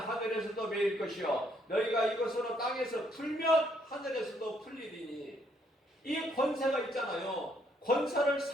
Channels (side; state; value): both; normal; correlation 0.70